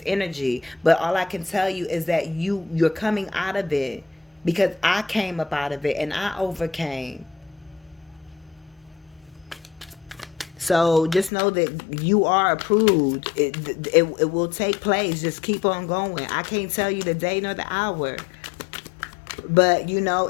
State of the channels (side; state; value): right; drops out; at 11.3 s